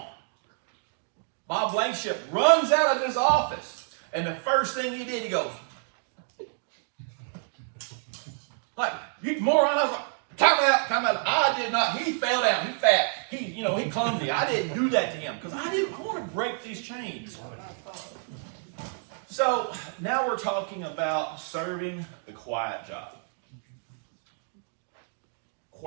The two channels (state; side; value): silent; left; 59 dB below the other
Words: Bob Blankenship runs out of his office, and the first thing he did, he goes, like, you moron. I was like, time out. I did not. He fell down. He fat. He clumsy. I didn't do that to him because I want to break these chains. So now we're talking about serving the quiet job.